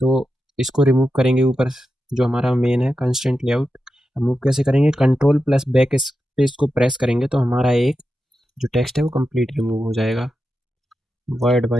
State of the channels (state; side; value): normal; both; correlation 0.90